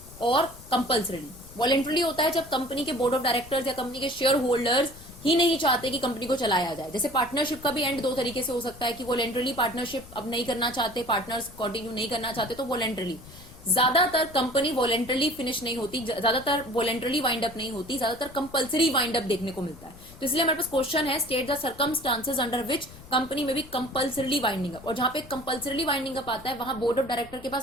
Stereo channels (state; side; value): noise; left; rumble, 19 dB below the sound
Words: और कंपल्सरीली। वॉलेंटरली होता है जब कंपनी के बोर्ड ऑफ डायरेक्टर्स या कंपनी के शेयर होल्डर्स ही नहीं चाहते कि कंपनी को चलाया जाए। जैसे पार्टनरशिप का भी एंड दो तरीके से हो सकता है कि वॉलेंटरली पार्टनरशिप अब नहीं करना चाहते, पार्टनर्स कंटिन्यू नहीं करना चाहते, तो वॉलेंटरली। ज्यादातर कंपनी वॉलेंटरली फिनिश नहीं होती, ज्यादातर वॉलेंटरली वाइंड अप नहीं होती, ज्यादातर कंपल्सरी वाइंड अप देखने को मिलता है। तो इसलिए हमारे पास क्वेश्चन है, state the circumstances under which company में भी कंपल्सरीली वाइंडिंग अप। और जहां पे कंपल्सरीली वाइंडिंग अप आता है वहां बोर्ड ऑफ डायरेक्टर के